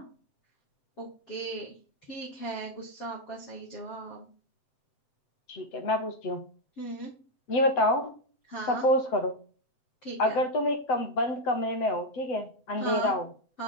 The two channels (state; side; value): late; right; 7.8 ms